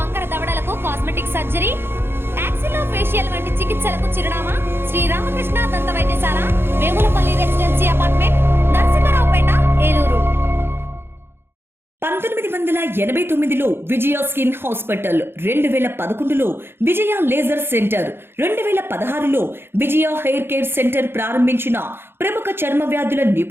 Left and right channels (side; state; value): left; late; 0.11 ms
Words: దవడలకు కాస్మెటిక్ సర్జరీ, యాక్సిలోఫేషియల్ వంటి చికిత్సలకు చిరునామా శ్రీ రామకృష్ణ దంత వైద్యశాల, వేములపల్లి రెసిడెన్సీ అపార్ట్మెంట్, నరసింహారావుపేట, ఏలూరు. 1989లో విజయ స్కిన్ హాస్పిటల్, 2011లో విజయ లేజర్ సెంటర్, 2016లో విజయ హెయిర్ కేర్ సెంటర్ ప్రారంభించిన ప్రముఖ చర్మ వ్యాధుల